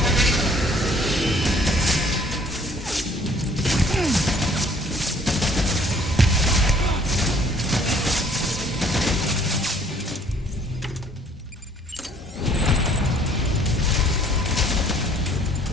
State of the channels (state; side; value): normal; both; correlation 0.59